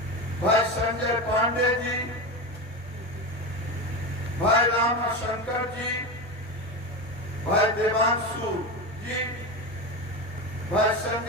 भाई संजय पांडे जी, भाई राम शंकर जी, भाई देवांशु जी, भाई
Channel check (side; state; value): both; normal; correlation 0.20